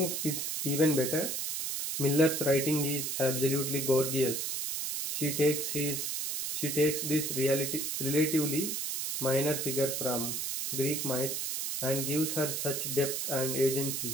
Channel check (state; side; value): noise; right; hiss, 2 dB below the sound